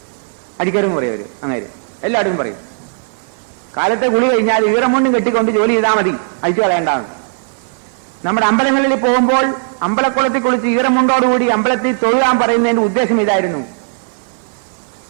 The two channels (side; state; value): left; silent; 56 dB below the other